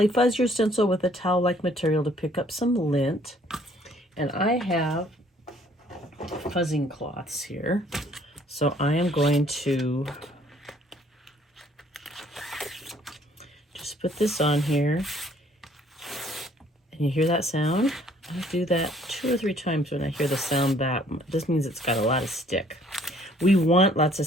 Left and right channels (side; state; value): both; normal; correlation 0.61